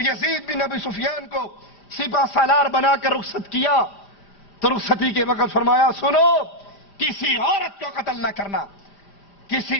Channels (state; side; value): late; right; 5.0 ms